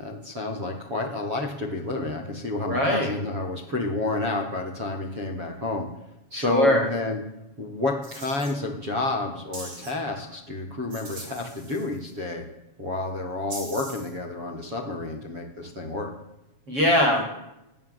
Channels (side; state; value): left; late; 7.2 ms